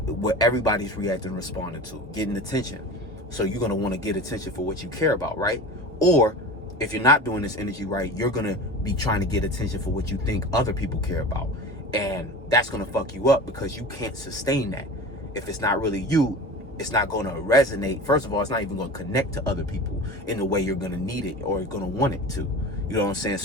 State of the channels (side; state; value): both; normal; correlation 0.33